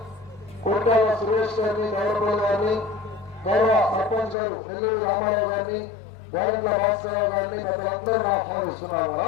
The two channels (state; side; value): drops out; right; at 4.4 s